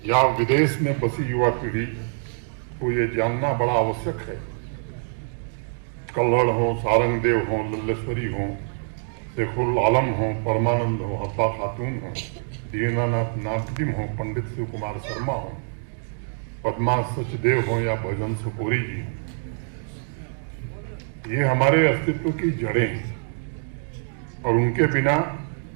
या विदेश में बसी युवा पीढ़ी को ये जानना बड़ा आवश्यक है। कल्हड़ हो, सारंगदेव हो, लल्लेश्वरी हो, शेखुल आलम हो, परमानंद हो, हब्बा खातून हो, दीनानाथ नादिम हो, पंडित शिव कुमार शर्मा हो, पद्मा सचदेव हो या भजन सुपोरी जी हो, ये हमारे अस्तित्व की जड़ें हैं और उनके बिना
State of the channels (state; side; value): silent; left; digital silence